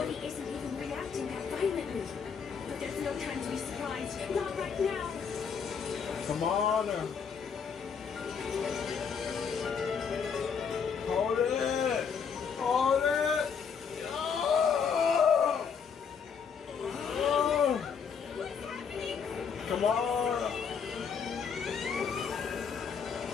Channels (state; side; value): quieter; right; 6.5 dB